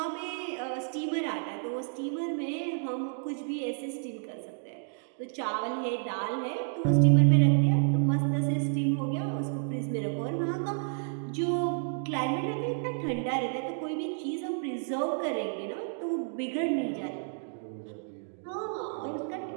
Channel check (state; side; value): silent; left; digital silence